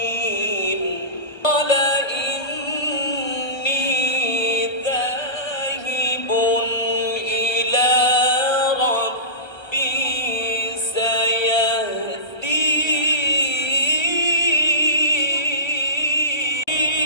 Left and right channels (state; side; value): late; right; 1.3 ms